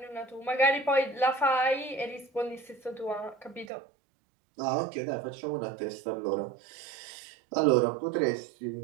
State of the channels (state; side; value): drops out; left; at 3.7 s